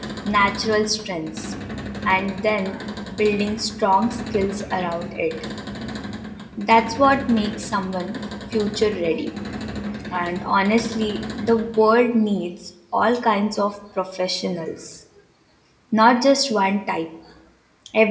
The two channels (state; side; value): identical; both; correlation 1.00